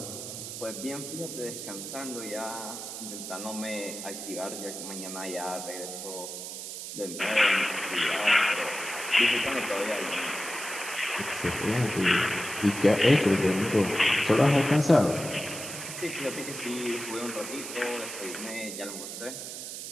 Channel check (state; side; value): noise; right; hiss, 8 dB below the sound